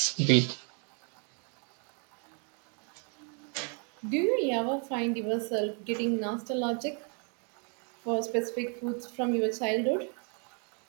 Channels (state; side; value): quieter; left; 38.9 dB